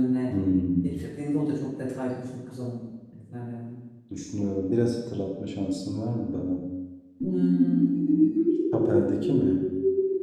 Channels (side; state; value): both; identical; correlation 1.00